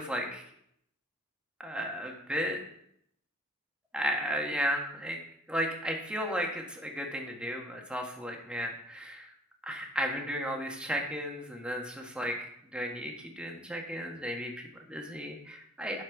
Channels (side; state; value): both; normal; correlation 0.55